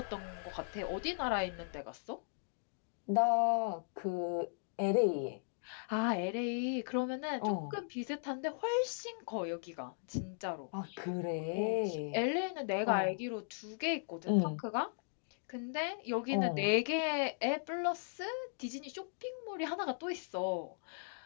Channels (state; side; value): silent; right; digital silence